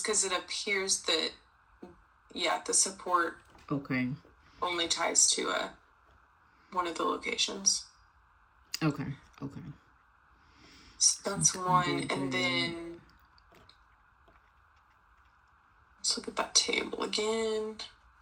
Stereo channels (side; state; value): both; identical; correlation 1.00